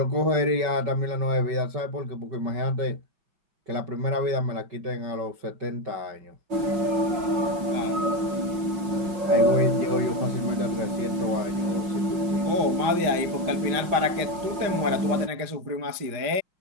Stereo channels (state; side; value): late; left; 5.5 ms